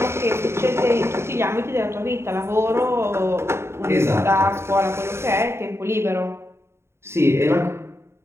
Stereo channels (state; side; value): late; left; 0.12 ms